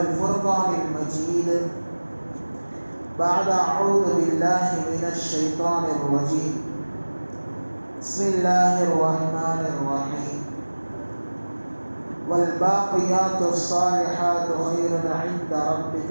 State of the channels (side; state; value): both; inverted; correlation -1.00